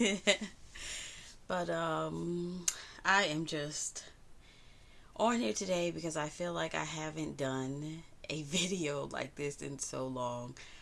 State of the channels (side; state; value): both; identical; correlation 1.00